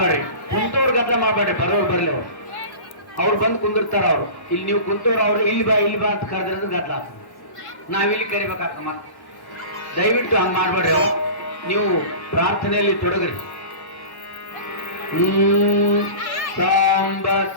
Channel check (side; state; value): right; late; 1.1 ms